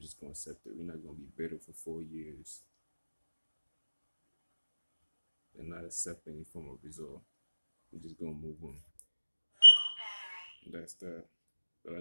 gonna accept it. We're not gonna be bitter for 4 years and not accept any form of result. We're just gonna move on. That's that. But I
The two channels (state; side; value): inverted; both; correlation -1.00